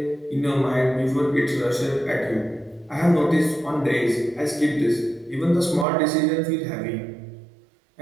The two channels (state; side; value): drops out; left; at 5.9 s